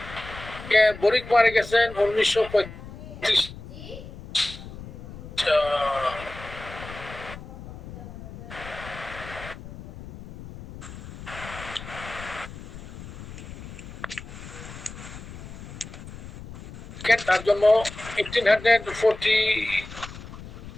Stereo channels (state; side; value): noise; left; rumble, 13 dB below the sound